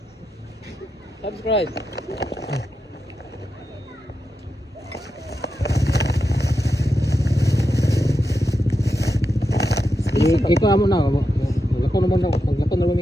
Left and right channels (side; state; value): both; normal; correlation 0.88